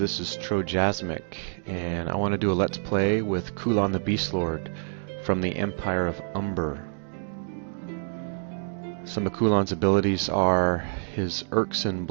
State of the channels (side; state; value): left; silent; digital silence